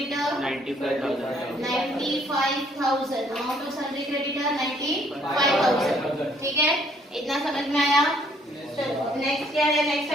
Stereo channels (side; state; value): both; normal; correlation 0.64